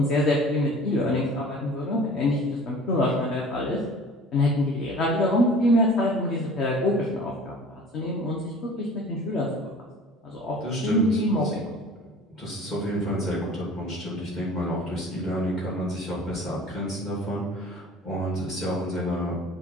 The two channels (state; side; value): normal; both; correlation 0.45